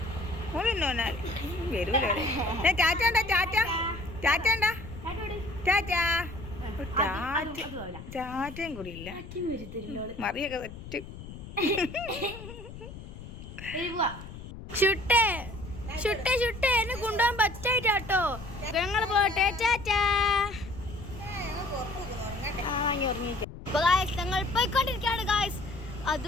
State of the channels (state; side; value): noise; left; rumble, 13 dB below the sound